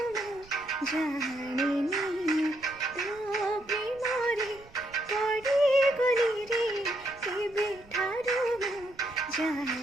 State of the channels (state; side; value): noise; right; rumble, 24 dB below the sound